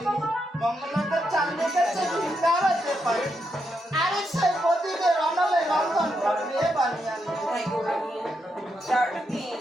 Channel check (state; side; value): normal; both; correlation 0.82